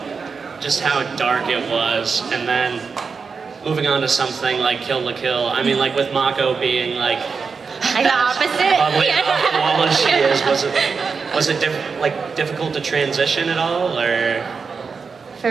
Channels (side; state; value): left; quieter; 5.2 dB